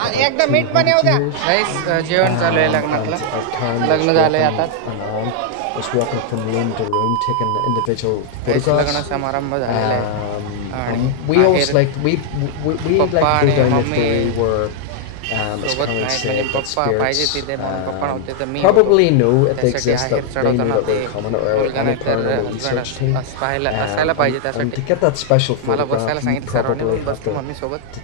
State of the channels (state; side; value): different; both; correlation -0.01